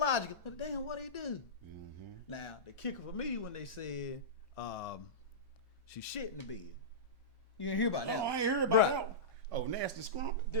but damn, what'd he do? Now, the kicker for me when they said she shit in the bed. You didn't hear about that? Oh, I ain't heard about Bruh. that. Oh, nasty scrump.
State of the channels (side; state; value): both; normal; correlation -0.16